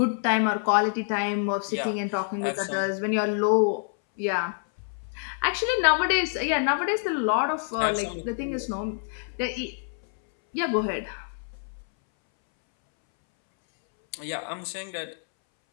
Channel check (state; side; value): silent; right; 60 dB below the other